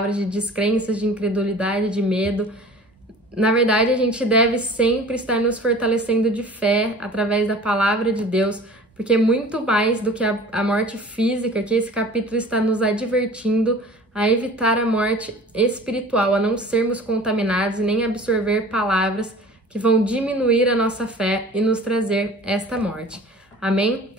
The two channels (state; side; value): normal; both; correlation 0.43